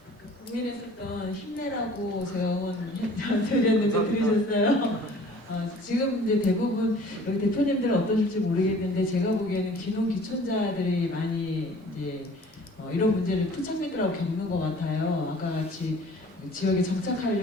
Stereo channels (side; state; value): both; normal; correlation 0.50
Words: 고민했었던 힘내라고 제가 응원 드렸는데 들으셨어요? 지금 이제 대부분 여기 대표님들은 어떠실지 모르겠는데 제가 보기에는 귀농귀촌자들이 많이 이제 이런 문제를 토착민들하고 겪는 것 같아요. 아까 같이 지역에